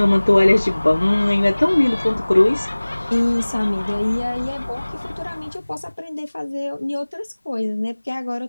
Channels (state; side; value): inverted; both; correlation -1.00